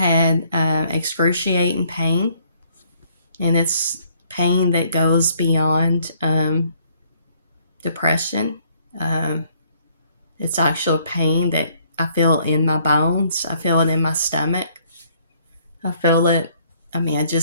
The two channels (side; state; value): both; inverted; correlation -0.65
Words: excruciating pain, and it's pain that goes beyond depression. Um, it's actual pain that I feel in my bones. I feel it in my stomach. I feel it, I